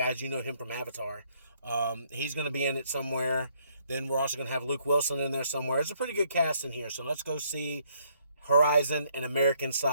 you know him from Avatar. He's going to be in it somewhere. Then we're also going to have Luke Wilson in there somewhere. It's a pretty good cast in here. So let's go see Horizon, an American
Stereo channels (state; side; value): inverted; both; correlation -0.68